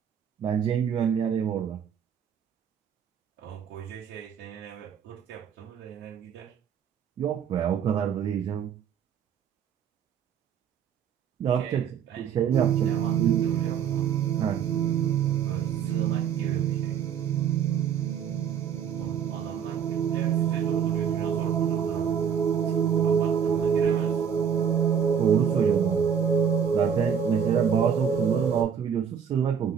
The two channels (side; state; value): left; quieter; 7.9 dB